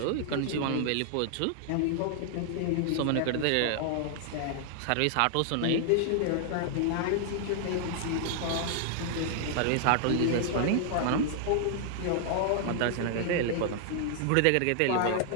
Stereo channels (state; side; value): different; both; correlation -0.01